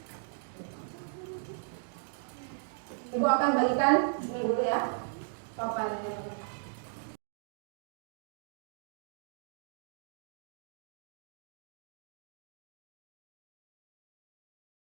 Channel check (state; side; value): silent; left; digital silence